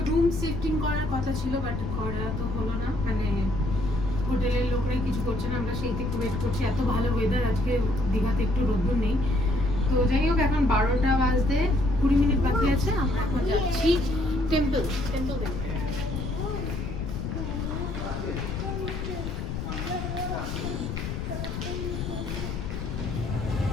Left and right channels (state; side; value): noise; left; rumble, 4 dB below the sound